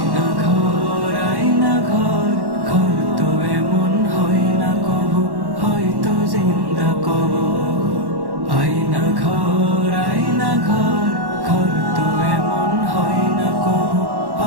ঘর, আয়না ঘর, ঘর তো এমন হয় না কবু, হয়তো জিন্দা কবর। আয়না ঘর, আয়না ঘর, ঘর তো এমন হয় না কবু,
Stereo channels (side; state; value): left; late; 1.1 ms